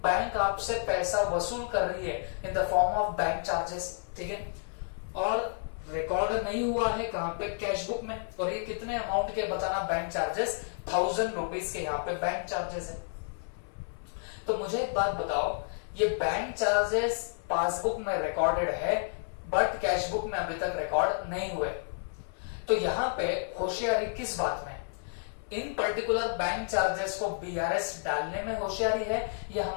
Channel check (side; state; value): right; silent; 57 dB below the other